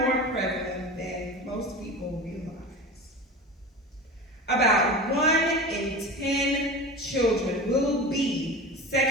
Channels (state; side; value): normal; both; correlation 0.31